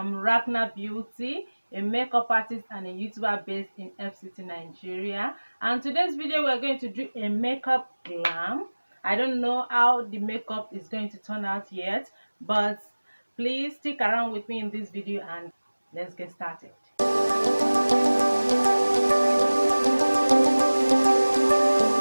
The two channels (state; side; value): inverted; both; correlation -1.00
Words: Racnna Beauty, a makeup artist and a YouTuber based in FCT, Nigeria. And today's video we're going to do a makeup glam. I don't know how the makeup is going to turn out yet, but please stick around with me in this video and let's get started.